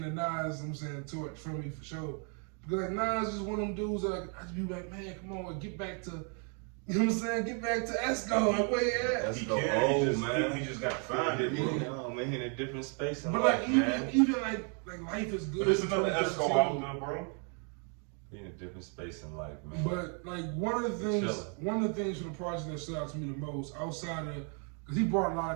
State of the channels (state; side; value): quieter; left; 39.9 dB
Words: the Nas, you know what I'm saying, torch from me for sure. Because like Nas is one of them dudes that I just be like, man, come on, get back to, you know what I'm saying? Get back to Esco. Like, where you at? He can't. He just got to find it. Yeah, man, he in a different space in But life, like man. even like life is good. But there's another in Esco 2013. out there, bro. He in a different space in life, man. But like one of the things from the project that stood out to me the most, outside of, because he brought a lot